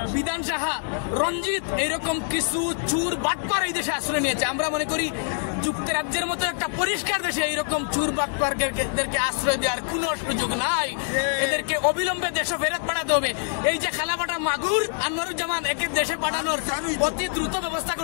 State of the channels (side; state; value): right; silent; digital silence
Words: বিধান সাহা, রঞ্জিত, এইরকম কিছু চোর বাটপার এই দেশে আশ্রয় নিয়েছে। আমরা মনে করি যুক্তরাজ্যের মতো একটা পরিষ্কার দেশে এইরকম চোর বাটপারদেরকে আশ্রয় দেওয়ার কোনো সুযোগ নাই। এদেরকে অবিলম্বে দেশে ফেরত পাঠাতে হবে। এই যে খালাফাটা মাগুর আনোয়ারুজ্জামান, একে দেশে পাঠানোর অতি দ্রুত ব্যবস্থা